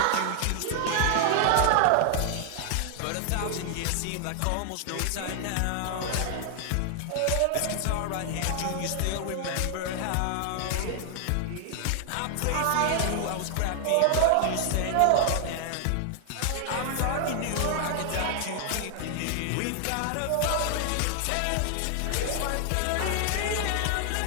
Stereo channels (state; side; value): different; both; correlation 0.00